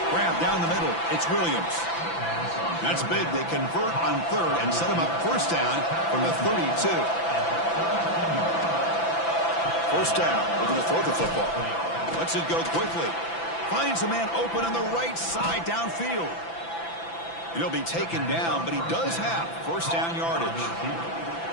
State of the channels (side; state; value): right; late; 6.0 ms